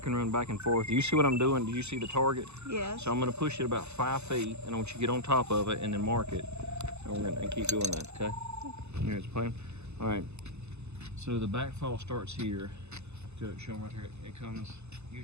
run back and forth. Do you see what I'm doing? Do you see the target? Yes. So I'm gonna push it about 5 feet, and I want you to get on top of it and then mark it. And we're gonna keep doing that, okay? Here's the plan. All right, so the backfall starts here. Show them right here. It comes,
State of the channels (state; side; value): late; left; 0.81 ms